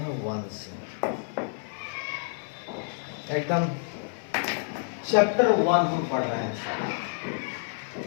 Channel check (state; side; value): silent; right; 59 dB below the other